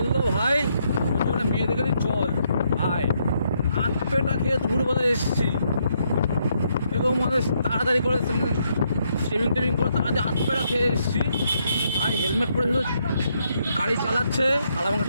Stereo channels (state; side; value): inverted; both; correlation -0.75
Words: ভাই ওর জন্য মেয়ে দেখে দিই চল ভাই, হাত পেটা খেয়ে দুপুরবেলা এসেছি এবং মানে তাড়াতাড়ি করে শেভিং টেভিং করে তাড়াতাড়ি হাত পেটা খেয়ে এসেছি। আর হেলমেট পরে শুধু গাড়ি চালাচ্ছে আর আমাকে